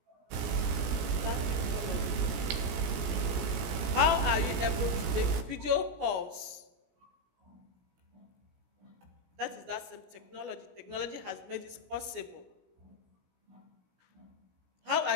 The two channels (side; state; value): left; late; 17 ms